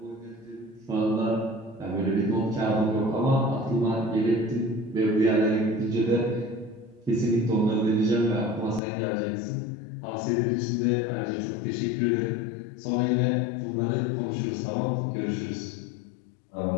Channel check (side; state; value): right; drops out; at 8.8 s